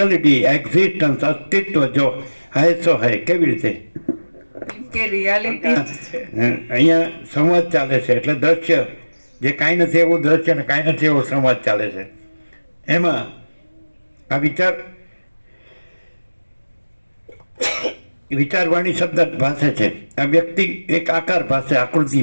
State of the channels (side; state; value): both; inverted; correlation -1.00